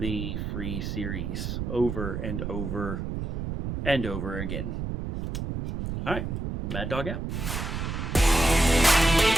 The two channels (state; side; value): noise; right; rumble, 4 dB below the sound